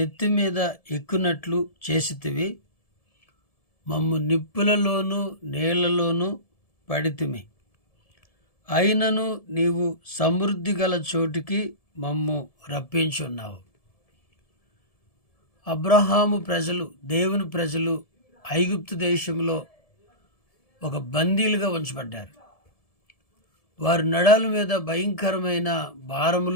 మీద ఎక్కునట్లు చేసితివి. మమ్ము నిప్పులలోనూ నీళ్లలోనూ పడితిమి. అయినను నీవు సమృద్ధి గల చోటికి మమ్ము రప్పించున్నావు. అబ్రహాము ప్రజలు, దేవుని ప్రజలు ఐగుప్తు దేశంలో ఒక బందీలుగా ఉంచబడ్డారు. వారి నడాల మీద భయంకరమైన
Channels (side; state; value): right; late; 1.7 ms